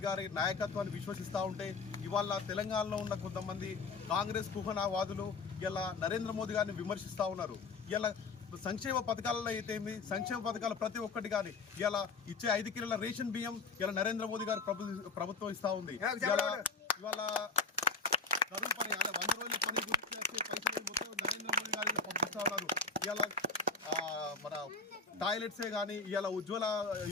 గారి నాయకత్వాన్ని విశ్వసిస్తూ ఉంటే ఇవాళ తెలంగాణలో ఉన్న కొంతమంది కాంగ్రెస్ కుహనావాదులు ఇలా నరేంద్ర మోదీ గారిని విమర్శిస్తూ ఉన్నారు. ఇలా సంక్షేమ పథకాలలో అయితే సంక్షేమ పథకాలు ప్రతి ఒక్కటి కానీ ఇలా ఇచ్చే 5 కిలోల రేషన్ బియ్యం ఇలా నరేంద్ర మోదీ గారు ప్రభుత్వం ఇస్తూ ఉంది. ఇవాళ కరువు పని 100 రోజుల పని గురించి పైసలు మొత్తం నరేంద్ర మోదీ గారు పంపిస్తూ ఉన్నారు. ఇలా మన టాయిలెట్సే కానీ ఇలా ఉజ్వల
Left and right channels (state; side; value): quieter; right; 4.3 dB